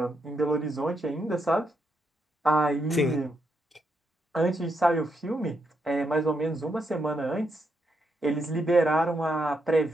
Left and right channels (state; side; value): normal; both; correlation 0.80